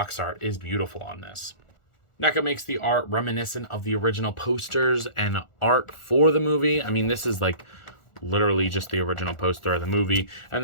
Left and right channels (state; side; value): late; right; 1.4 ms